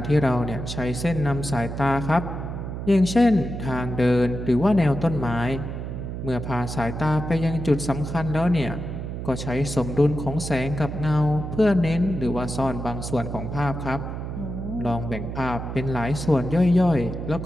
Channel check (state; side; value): noise; right; hum, 6 dB below the sound